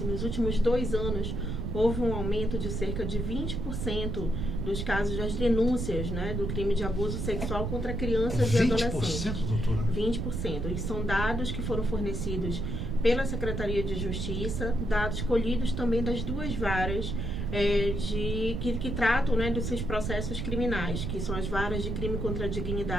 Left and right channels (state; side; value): noise; right; rumble, 2 dB below the sound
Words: Nos últimos 2 anos, houve um aumento de cerca de 20% dos casos das denúncias do crime de abuso sexual contra crianças e adolescentes. 20%, doutora? 20%. E são dados que foram fornecidos pela Secretaria de Justiça, dados colhidos também das 2 varas que tratam desses processos criminais, que são as varas de crime contra a